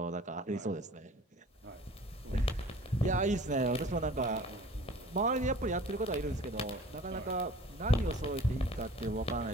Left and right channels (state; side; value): normal; both; correlation 0.46